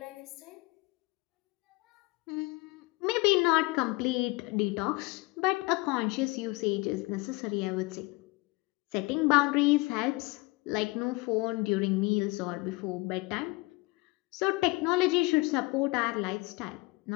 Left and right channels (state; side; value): quieter; right; 24.7 dB